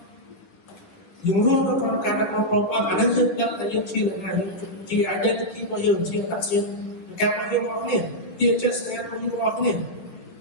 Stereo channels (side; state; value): right; late; 10 ms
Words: យើងរួមនៅក្នុងការរបស់ព្រះអង្គអានេះយើងដឹងថាយើងជាអ្នកណាជា identity របស់យើងជាអត្តសញ្ញាណការរបស់យើងរបស់គ្នាជាចិត្តសញ្ញារបស់យើងរបស់គ្នា